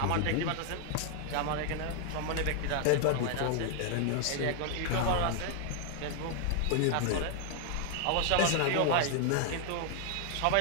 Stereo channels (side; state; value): both; different; correlation 0.00